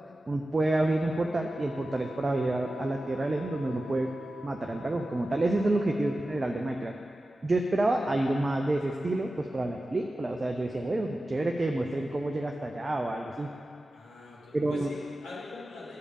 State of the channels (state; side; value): normal; both; correlation 0.94